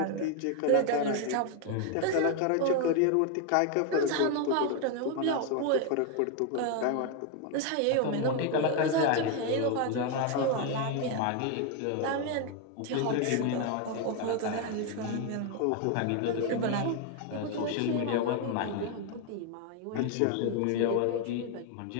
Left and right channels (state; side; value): different; both; correlation 0.01